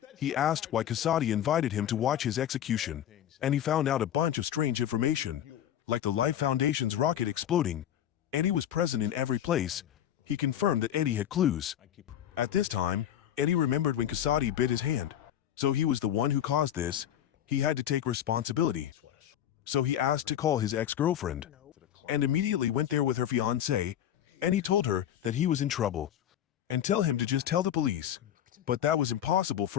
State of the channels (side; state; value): right; quieter; 10.7 dB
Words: He asked why Kasadi invited him to watch his execution, and he found out a bunch of strange information, like the Life Foundation's rocket exploding. Eddie was present in every place. He confirmed that Eddie had clues. At this time, Eddie remembered when Kasadi bit his hand. So he was the one who caused this. He had to take responsibility. So he asked to call his ex-girlfriend, and immediately went there with her fiancé, and he told her that he was in trouble, and tell him to just tell the police. But that was impossible